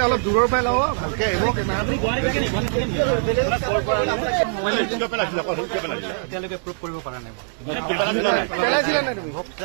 অলপ দূৰৰ পৰাই লওঁ ভালকে আহিব। এতিয়ালৈকে প্ৰুভ কৰিব পৰা নাই। পেলাইছিলা নাই তুমি?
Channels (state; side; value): silent; left; digital silence